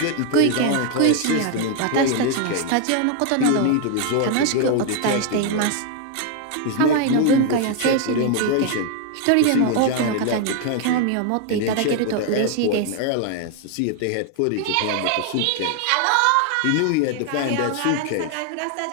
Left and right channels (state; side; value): different; both; correlation 0.00